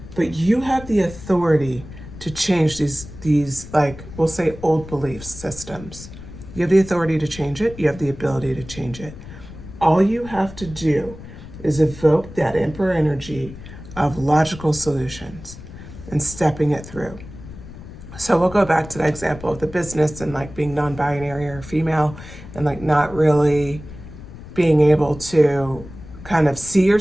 But you have the authority to change these like, we'll say old belief systems. You have the authority to change it. You have the ability to change it. All you have to do is evoke that Emperor energy of logical solutions and stepping it through. So we'll go back to that example of the business and like being non-binary or female and like not really being able to kind of see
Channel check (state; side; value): noise; left; rumble, 15 dB below the sound